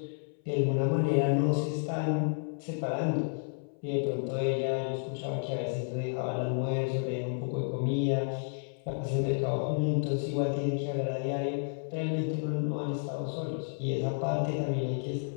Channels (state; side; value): silent; right; 57 dB below the other